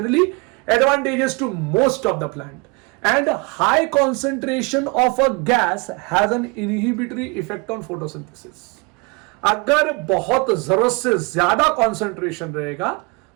advantageous to most of the plant, and high concentration of a gas has an inhibitory effect on photosynthesis। अगर बहुत जरूरत से ज्यादा कंसंट्रेशन रहेगा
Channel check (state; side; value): quieter; left; 29.6 dB